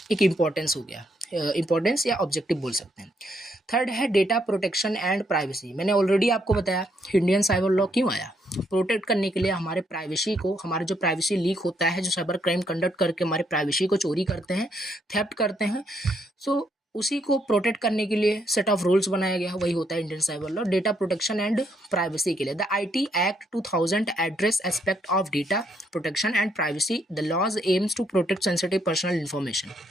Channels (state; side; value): normal; both; correlation 0.74